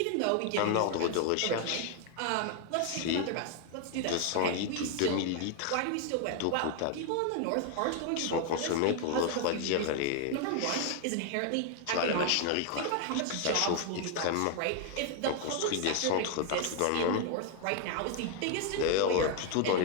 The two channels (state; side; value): different; both; correlation 0.00